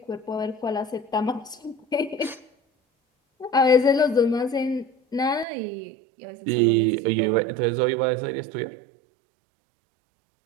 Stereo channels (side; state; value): left; drops out; at 5.5 s